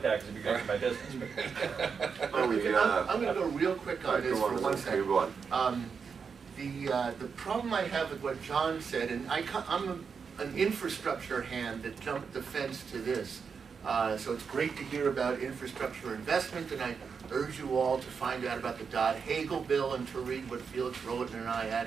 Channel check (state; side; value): quieter; left; 5.9 dB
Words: that because it'd be great for my business. I'm going to go real quick on this for 1 second. The problem I have with what John said, and I'm an infrastructure hand that jumped the fence to this. So it's great to hear about infrastructure investment, and I urge you all to find out about the Dodd-Hagel bill and to read what Felix Roten and I